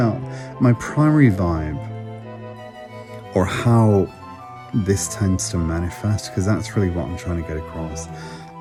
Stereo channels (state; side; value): identical; both; correlation 1.00